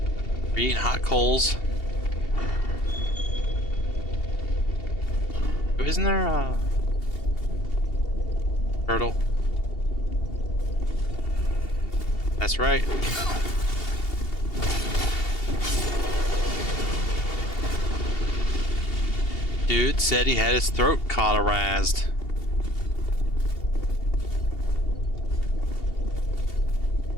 Are you eating hot coals? Isn't there a turtle? That's right. Dude said he had his throat cauterized.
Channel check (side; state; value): right; late; 2.7 ms